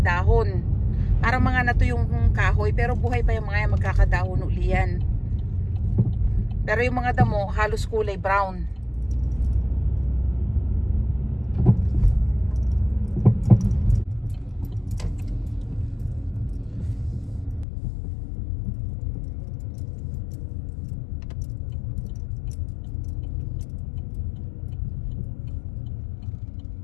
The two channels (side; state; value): right; drops out; at 17.7 s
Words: dahon. Parang mga nato yung kahoy pero buhay pa yung mga yan, magkakadahon uli yan. Pero yung mga damo halos kulay brown.